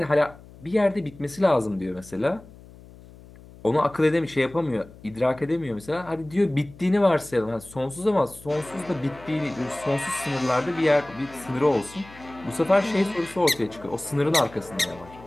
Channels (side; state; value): left; noise; hum, 21 dB below the sound